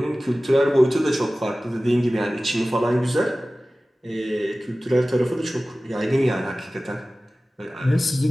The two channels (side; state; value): both; normal; correlation 0.97